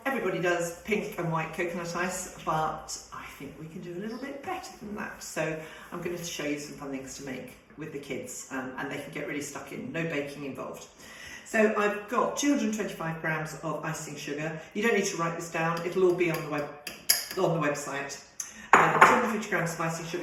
everybody does pink and white coconut ice, but I think we can do a little bit better than that. So I'm going to show you some fun things to make with the kids, and they can get really stuck in, no baking involved. So I've got 225 grams of icing sugar. You don't need to write this down, it'll all be on the website. 250 grams of icing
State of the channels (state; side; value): identical; both; correlation 1.00